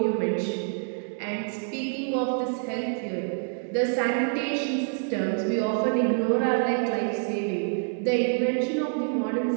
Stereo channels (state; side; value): silent; left; 57 dB below the other